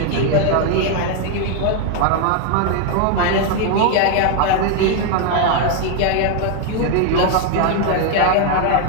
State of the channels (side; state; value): both; different; correlation 0.01